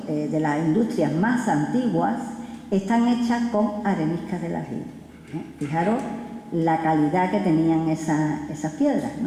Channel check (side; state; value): both; identical; correlation 1.00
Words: de las industrias más antiguas, están hechas con areniscas del aljibe. Fijaros la calidad que tenían esas piedras,